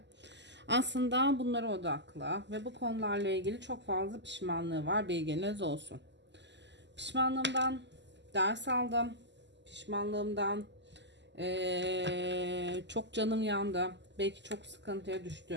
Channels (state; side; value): late; left; 0.51 ms